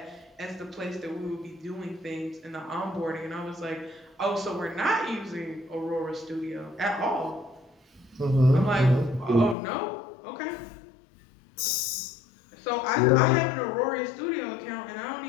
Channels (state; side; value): drops out; right; at 9.6 s